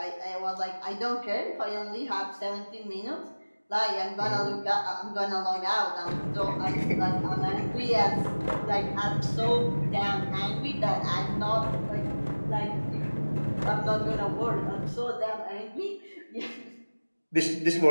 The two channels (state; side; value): inverted; both; correlation -1.00